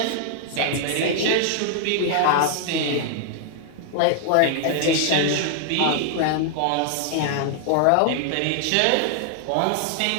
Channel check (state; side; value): different; both; correlation 0.00